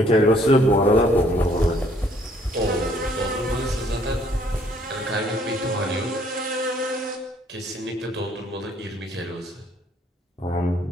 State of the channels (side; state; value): both; normal; correlation 0.63